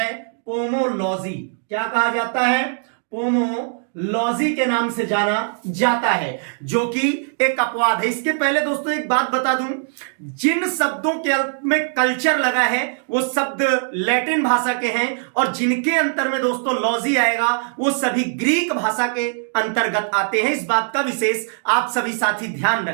पोमोलॉजी। क्या कहा जाता है? पोमोलॉजी के नाम से जाना जाता है, जो कि एक अपवाद है। इसके पहले दोस्तों एक बात बता दूं, जिन शब्दों के अंत में कल्चर लगा है वो शब्द लैटिन भाषा के हैं, और जिनके अंतर में दोस्तों लॉजी आएगा वो सभी ग्रीक भाषा के अंतर्गत आते हैं। इस बात का विशेष आप सभी साथी ध्यान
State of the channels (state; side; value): silent; left; digital silence